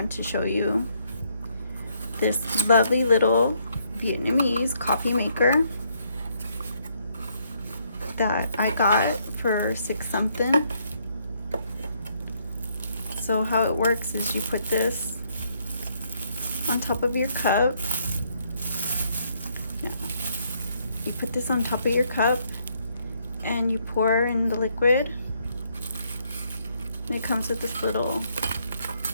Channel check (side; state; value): both; inverted; correlation -0.71